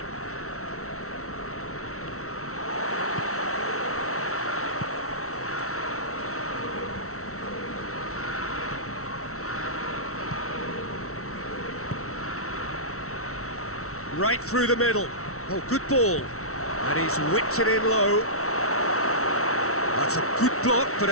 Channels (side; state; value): right; late; 0.63 ms